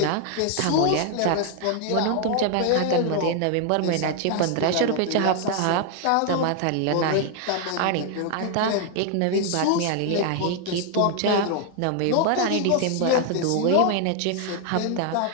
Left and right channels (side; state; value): both; different; correlation 0.00